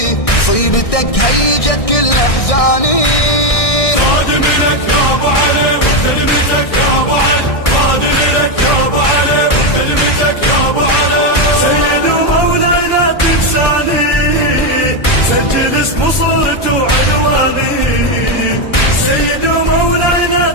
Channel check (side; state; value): right; late; 1.6 ms